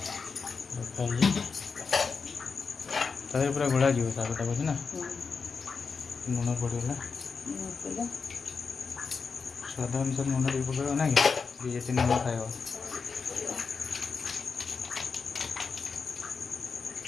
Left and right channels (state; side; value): quieter; right; 5.1 dB